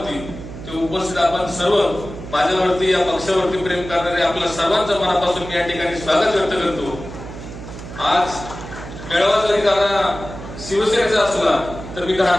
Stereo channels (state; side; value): noise; right; hum, 12 dB below the sound